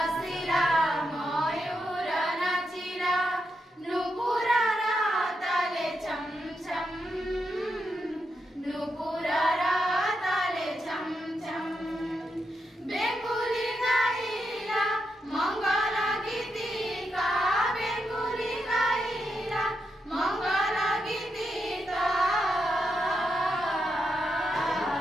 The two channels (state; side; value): normal; both; correlation 0.84